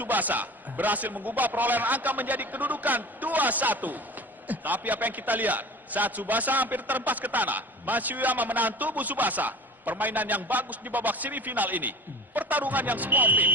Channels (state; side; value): normal; both; correlation 0.37